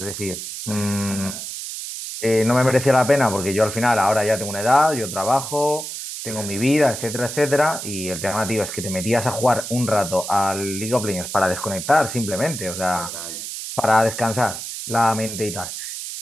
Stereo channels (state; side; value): noise; right; hiss, 7 dB below the sound